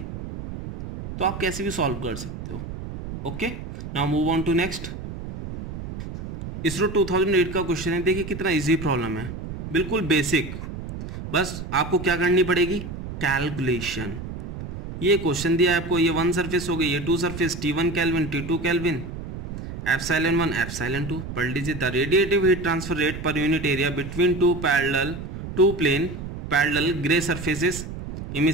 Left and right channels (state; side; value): noise; right; rumble, 9 dB below the sound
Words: तो आप कैसे भी सॉल्व कर सकते हो। Okay, now move on to next. ISRO 2008 का क्वेश्चन है, देखिए कितना इजी प्रॉब्लम है, बिल्कुल बेसिक। बस आपको क्या करनी पड़ेगी, कैलकुलेशन। ये क्वेश्चन दिया है आपको, ये 1 सरफेस हो गई, ये 2 surface, T1 kelvin, T2 kelvin, ε1 ε2। पढ़ लीजिए, the radiative heat transfer rate per unit area between two plane parallel grey surfaces,